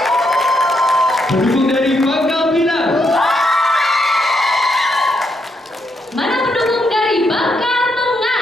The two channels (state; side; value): normal; both; correlation 0.78